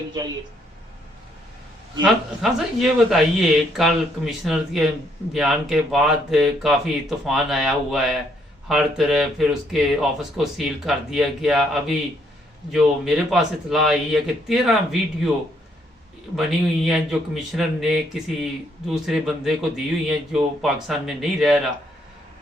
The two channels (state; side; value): normal; both; correlation 0.71